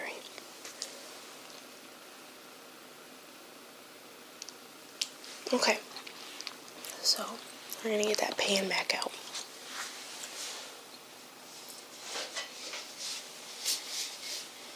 Okay, so we're gonna get that pan back out.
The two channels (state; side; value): identical; both; correlation 1.00